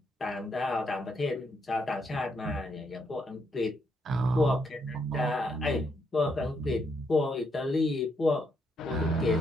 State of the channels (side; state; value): both; normal; correlation 0.76